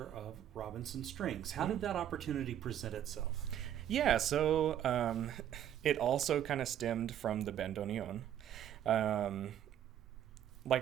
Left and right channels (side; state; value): left; quieter; 10.6 dB